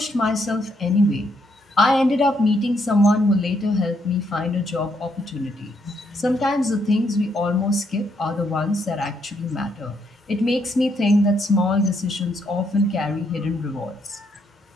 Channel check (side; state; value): both; normal; correlation 0.75